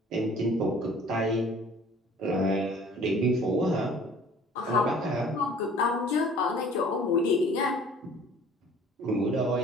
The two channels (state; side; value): normal; both; correlation 0.51